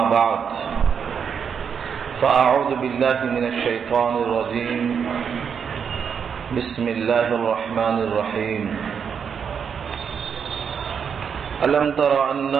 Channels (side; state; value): left; quieter; 7.0 dB